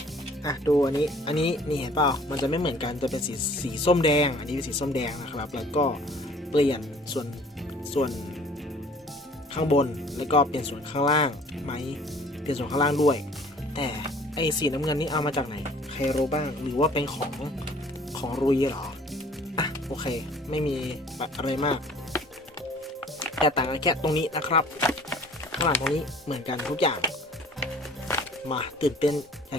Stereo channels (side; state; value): both; normal; correlation 0.52